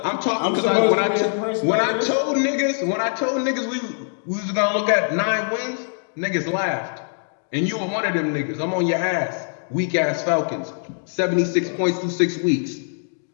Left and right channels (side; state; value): right; silent; digital silence